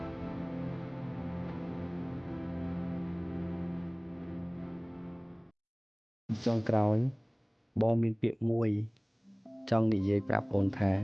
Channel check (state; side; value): identical; both; correlation 1.00